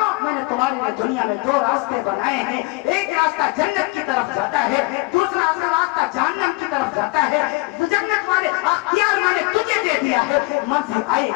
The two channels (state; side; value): quieter; right; 24.4 dB